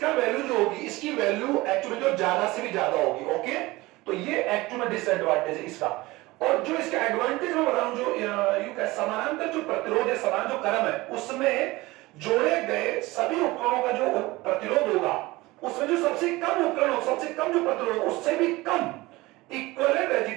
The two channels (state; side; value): quieter; left; 20.6 dB